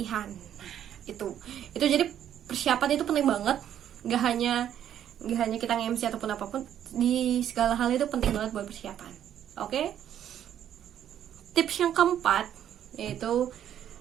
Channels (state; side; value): quieter; left; 10.3 dB